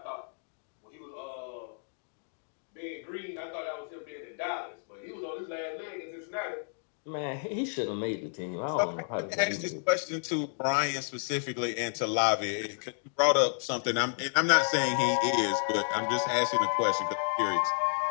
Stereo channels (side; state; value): right; silent; digital silence